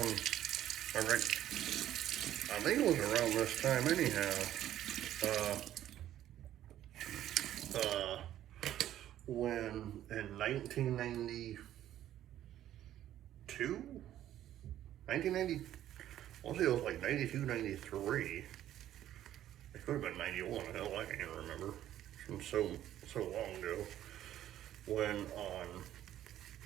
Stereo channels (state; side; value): quieter; left; 12.2 dB